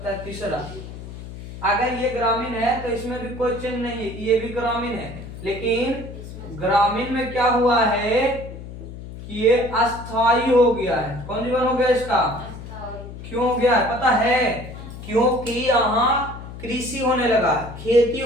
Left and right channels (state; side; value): noise; left; hum, 12 dB below the sound